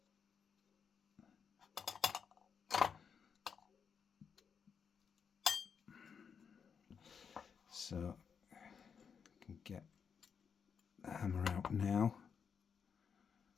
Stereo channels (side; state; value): right; quieter; 6.6 dB